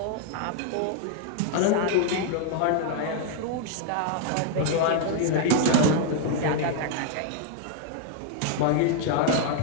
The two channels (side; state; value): both; different; correlation 0.00